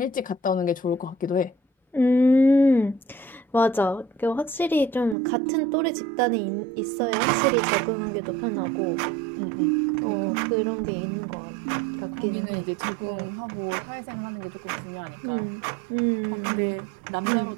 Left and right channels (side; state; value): left; drops out; at 5.2 s